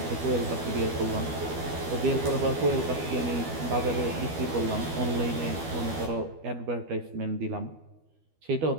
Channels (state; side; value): late; left; 12 ms